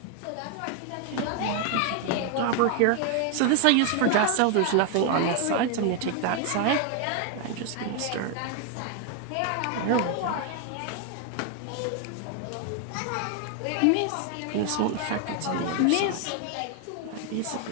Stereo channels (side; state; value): both; different; correlation 0.01